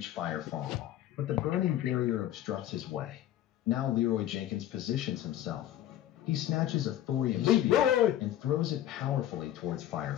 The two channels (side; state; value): right; quieter; 12.4 dB